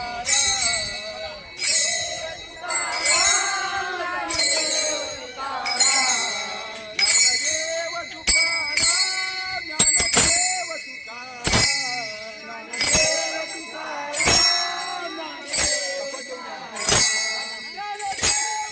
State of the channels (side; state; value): both; identical; correlation 1.00